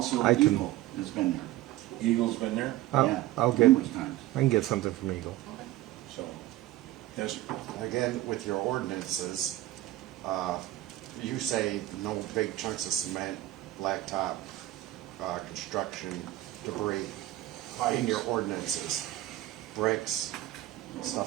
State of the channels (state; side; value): quieter; left; 15.5 dB